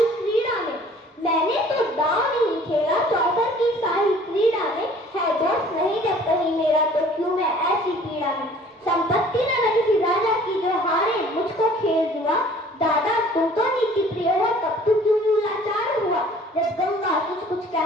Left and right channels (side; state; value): both; normal; correlation 0.52